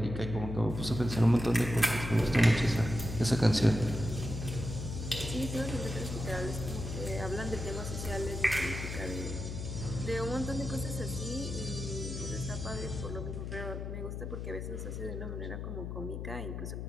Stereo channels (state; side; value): noise; left; hum, 5 dB below the sound